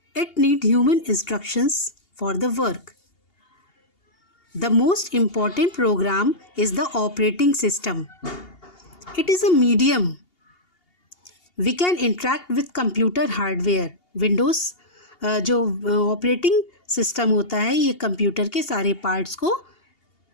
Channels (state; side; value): late; right; 2.8 ms